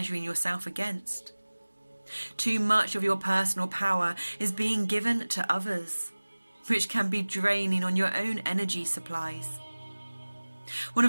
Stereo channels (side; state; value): both; inverted; correlation -1.00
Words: yourself against. Too much of your personal power is being given to others, which can be draining on your own energy supplies. One